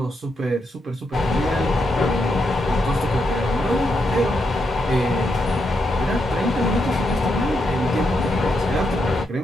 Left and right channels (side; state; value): both; normal; correlation 0.82